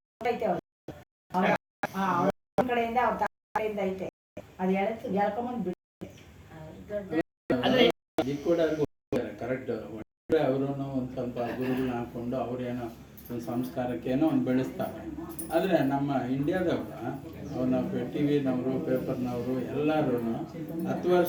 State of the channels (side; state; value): both; identical; correlation 1.00